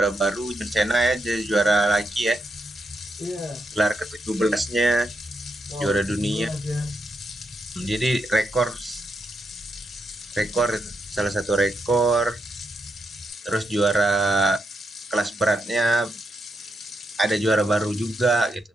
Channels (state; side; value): normal; both; correlation 0.82